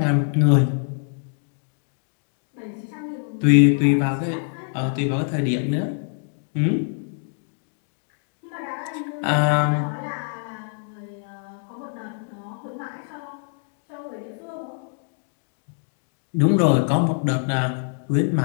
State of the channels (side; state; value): right; silent; digital silence